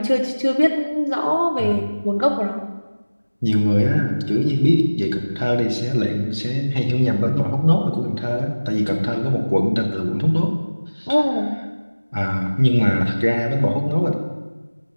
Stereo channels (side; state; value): both; inverted; correlation -1.00